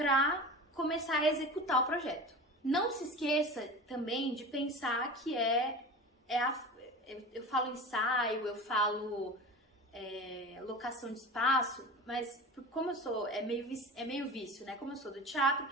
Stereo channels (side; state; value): both; normal; correlation 0.32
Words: começar a executar o projeto. Não se esqueça também de pensar que eu falo ensaio, eu falo locação de espaço, mas como eu sou, é meio vício, né? Como eu sou do teatro,